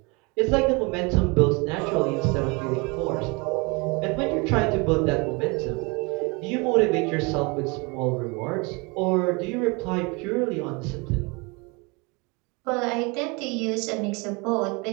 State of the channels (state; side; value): quieter; left; 28.6 dB